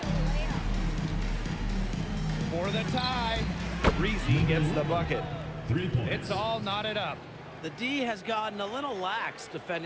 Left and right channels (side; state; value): both; identical; correlation 1.00